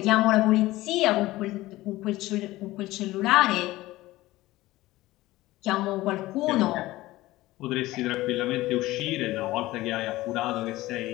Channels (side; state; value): right; quieter; 17.8 dB